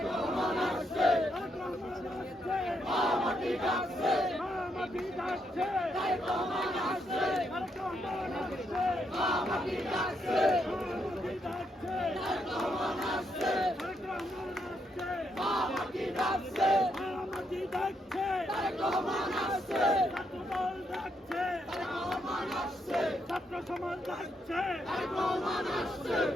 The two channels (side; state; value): both; normal; correlation 0.78